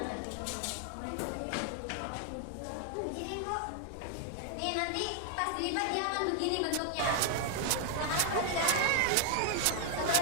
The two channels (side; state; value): both; different; correlation 0.00